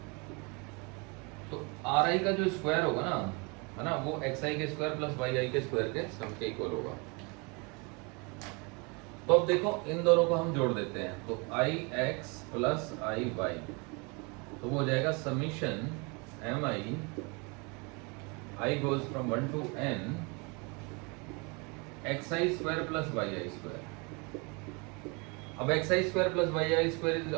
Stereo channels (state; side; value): quieter; left; 30.5 dB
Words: तो आर आई का जो स्क्वायर होगा ना, है ना, वो एक्स आई के स्क्वायर प्लस वाई आई के स्क्वायर के सम के इक्वल होगा. तो अब देखो, इन दोनों को हम जोड़ देते हैं. तो i x plus i y, तो वो हो जाएगा summation M i goes from 1 to n x I square plus y I square. अब x I square plus y I square is